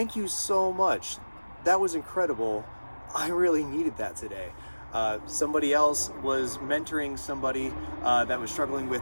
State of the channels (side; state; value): both; inverted; correlation -1.00